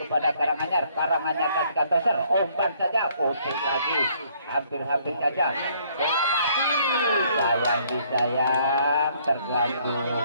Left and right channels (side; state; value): both; inverted; correlation -0.65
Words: kepada Karanganyar. Karanganyar kasihkan toser, umpan saja, pusing lagi, hampir-hampir saja bola mati, sayang disayang, terganggu